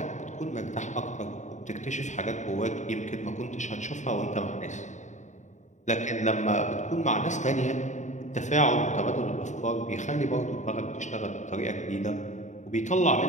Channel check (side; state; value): right; late; 0.35 ms